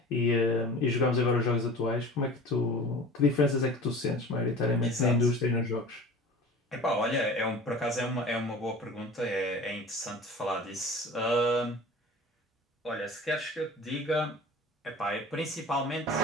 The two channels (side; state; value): both; normal; correlation 0.39